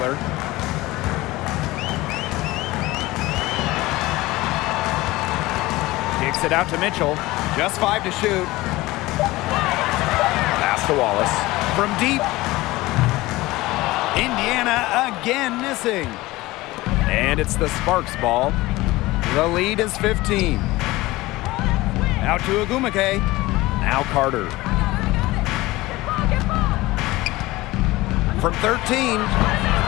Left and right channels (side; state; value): right; quieter; 19.3 dB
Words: Kicks it out to Mitchell. Just 5 to shoot. Pass to Wallace. From deep. Indiana again missing. And it's the Sparks ball. The lead is 15. Out to Agumake. Now Carter. From 13.